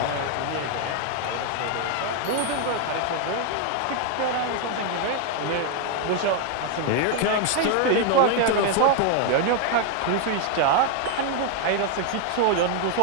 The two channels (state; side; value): different; both; correlation 0.00